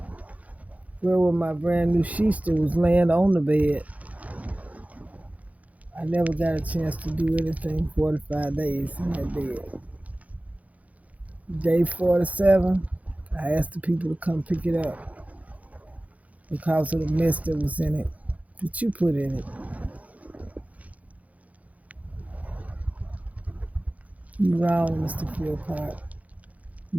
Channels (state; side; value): late; left; 0.070 ms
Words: Where were my brand new sheets that was laying on the bed? I never got a chance to do anything 45 days in that bed. Day 47, I asked the people to come pick it up because of the mess that was in it, that you put in it. You wrong, Mr. Philpott.